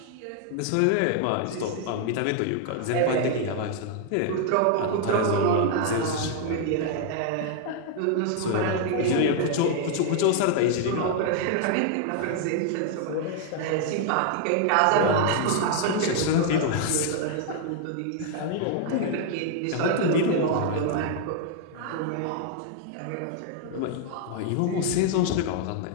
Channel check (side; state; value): both; different; correlation 0.00